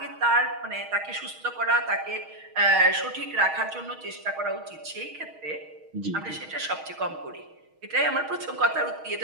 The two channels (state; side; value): late; left; 6.4 ms